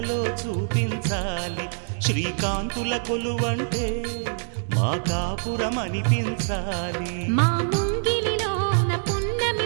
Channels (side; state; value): left; silent; 62 dB below the other